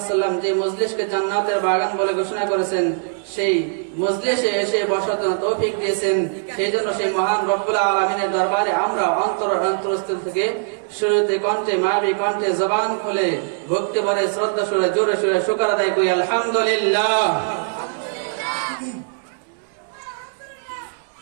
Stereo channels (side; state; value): left; silent; digital silence